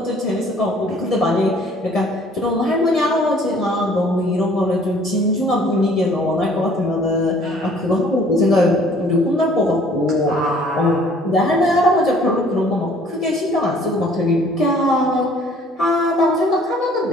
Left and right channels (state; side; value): normal; both; correlation 0.56